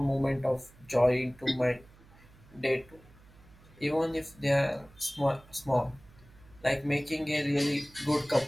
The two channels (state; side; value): noise; right; hum, 25 dB below the sound